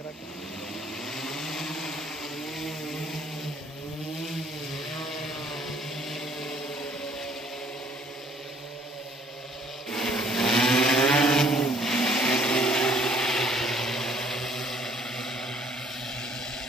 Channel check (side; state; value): both; normal; correlation 0.61